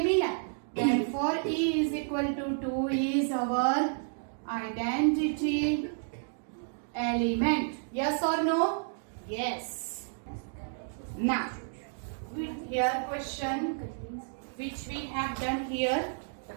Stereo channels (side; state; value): left; silent; digital silence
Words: मिला. Therefore e is equal to 2 is our identity element. Yes or no? Yes. Now, here question which we have done here. The